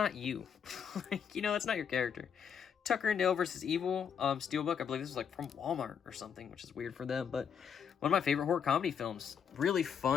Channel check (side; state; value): right; quieter; 7.5 dB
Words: you. Like, you know, that's not your character. Tucker and Dale versus Evil, Steelbook, I believe this was like from Walmart or something, which is weird for them, but one of my favorite horror comedy films. Really